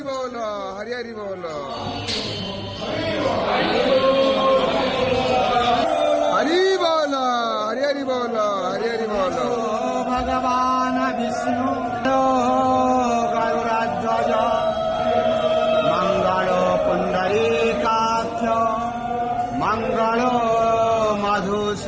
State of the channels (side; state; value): both; identical; correlation 1.00